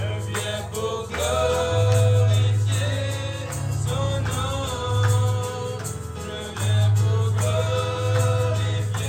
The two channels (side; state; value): both; identical; correlation 1.00